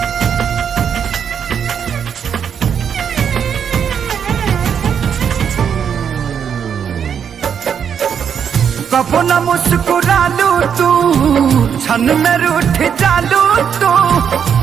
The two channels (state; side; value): quieter; left; 7.7 dB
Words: कबो न मुस्कुरालू तू, क्षण में रूठ जालू तू।